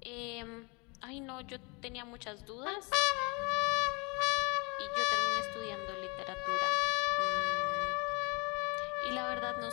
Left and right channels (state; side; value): quieter; right; 29.6 dB